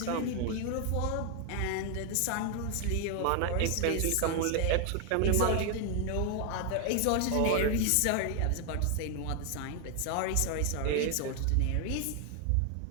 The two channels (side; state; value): both; different; correlation 0.01